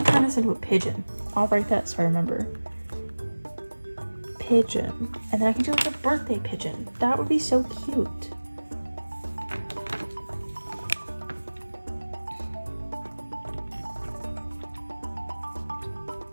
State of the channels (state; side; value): inverted; both; correlation -1.00